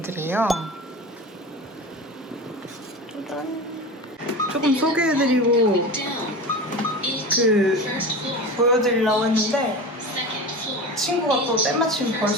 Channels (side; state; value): both; normal; correlation 0.29